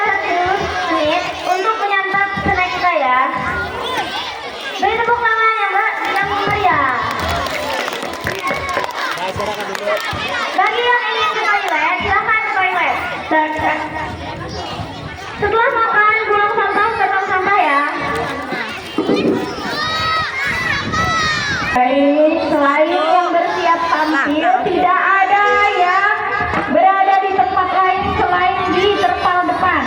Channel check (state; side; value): identical; both; correlation 1.00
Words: dulu menit untuk menyantap snack kita ya. Beri tepuk tangannya Mbak yang meriah. Bagi yang ingin ke toilet, silahkan ke toilet. Setelah makan, buang sampah ke tong sampah ya. Baik, selain yang bersiap tampil, tidak ada yang berada di tempat lain selain di terpal depan.